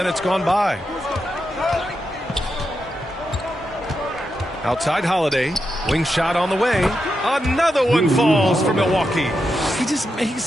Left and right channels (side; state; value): both; normal; correlation 0.86